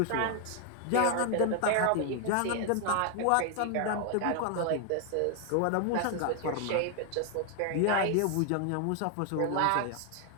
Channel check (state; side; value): different; both; correlation 0.00